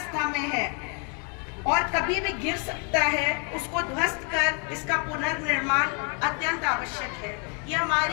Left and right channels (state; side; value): quieter; right; 37.1 dB